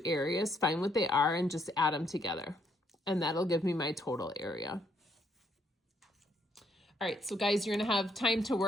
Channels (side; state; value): both; normal; correlation 0.72